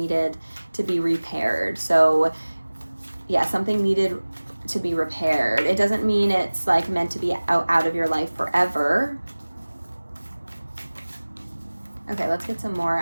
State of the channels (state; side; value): inverted; both; correlation -1.00